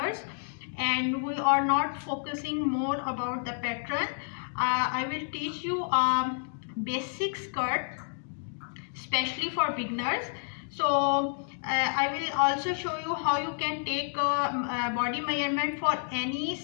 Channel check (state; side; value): silent; right; digital silence